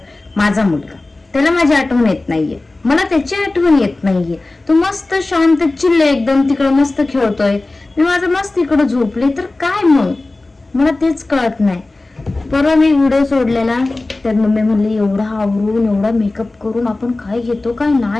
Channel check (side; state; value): right; quieter; 3.1 dB